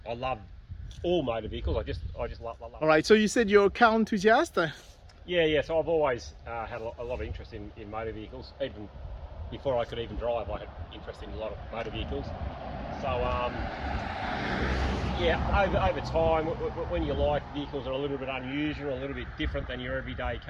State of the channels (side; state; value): both; identical; correlation 1.00